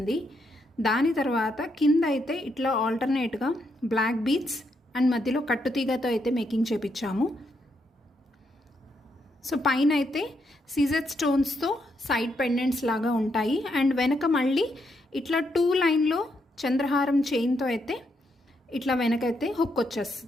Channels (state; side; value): normal; both; correlation 0.78